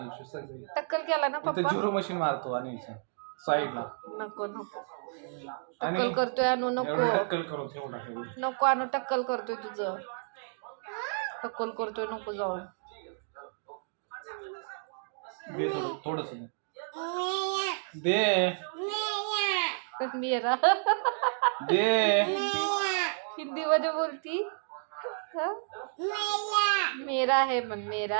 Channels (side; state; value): left; silent; digital silence